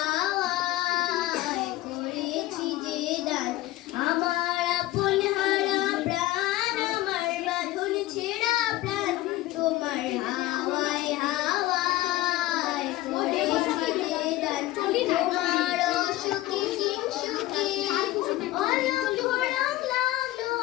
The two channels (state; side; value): quieter; right; 16.7 dB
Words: করেছি যে দান। আমার আপন হারা প্রাণ, আমার বাঁধন ছেঁড়া প্রাণ, তোমার হাওয়ায় হাওয়ায় করেছি যে দান। তোমার অসুখে কিংসুখে অলক্ষ রং লাগলো